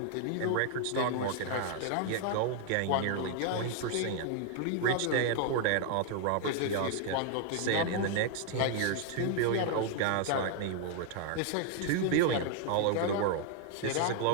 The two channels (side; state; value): both; different; correlation 0.00